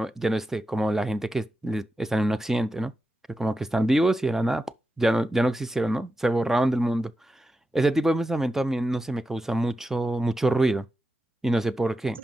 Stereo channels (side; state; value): both; normal; correlation 0.91